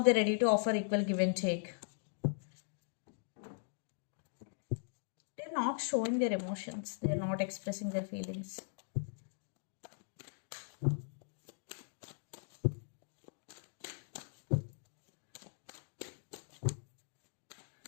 ready to offer equal give and take. They're not showing their emotions. They're not expressing their feelings.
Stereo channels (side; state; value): right; silent; digital silence